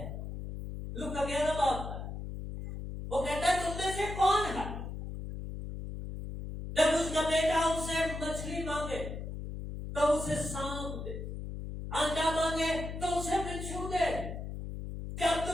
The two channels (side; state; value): left; noise; hum, 7 dB below the sound